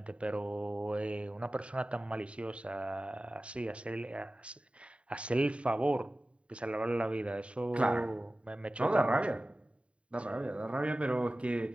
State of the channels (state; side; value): late; left; 0.061 ms